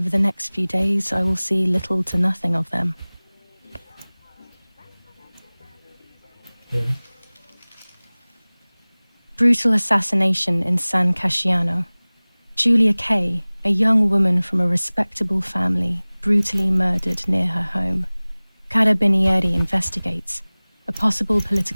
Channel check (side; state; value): both; inverted; correlation -1.00